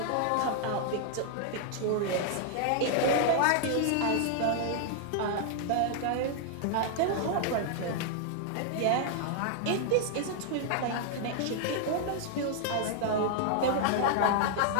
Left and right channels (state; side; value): different; both; correlation 0.00